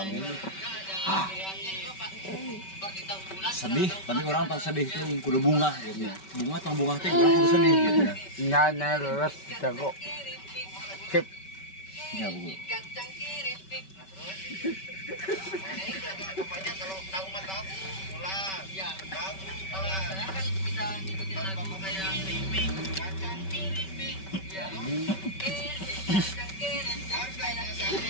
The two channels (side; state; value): right; late; 5.2 ms